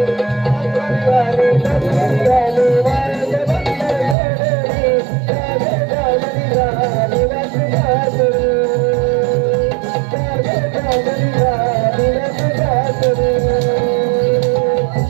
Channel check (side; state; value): left; drops out; at 4.2 s